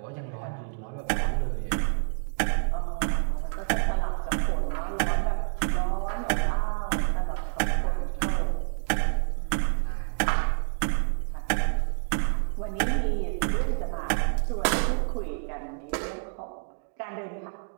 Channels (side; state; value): left; silent; digital silence